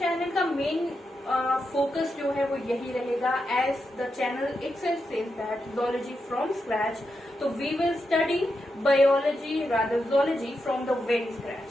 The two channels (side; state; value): both; normal; correlation 0.86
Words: का मेन फोकस जो है वो यही रहेगा, as the channel itself says that zoology from scratch. तो we will study biology, rather zoology from the very scratch,